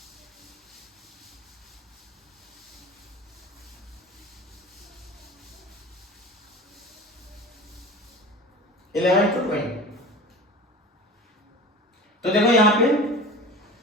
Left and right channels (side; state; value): both; normal; correlation 0.35